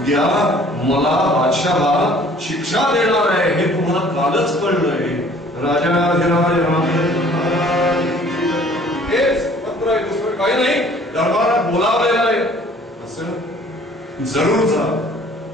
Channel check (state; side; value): normal; both; correlation 0.54